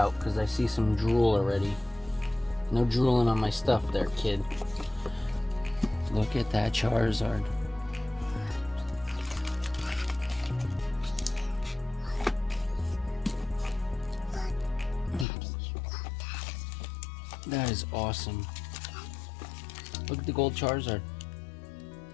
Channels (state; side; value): drops out; right; at 15.2 s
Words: because I see some drool already. No drooling on my stuff there, kid. Look at that Charizard. That is awesome. Look at the gold Charizard.